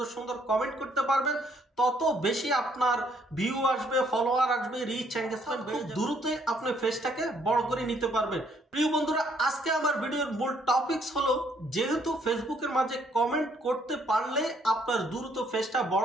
সুন্দর কমেন্ট করতে পারবেন, তত বেশি আপনার ভিউ আসবে, ফলোয়ার আসবে, রিচ এঙ্গেজমেন্ট খুব দ্রুতই আপনি ফেসটাকে বড় করে নিতে পারবেন। প্রিয় বন্ধুরা, আজকে আমার ভিডিওর মূল টপিকস হলো, যেহেতু ফেসবুকের মাঝে কমেন্ট করতে পারলে আপনার দ্রুত ফেসটা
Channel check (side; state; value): both; normal; correlation 0.67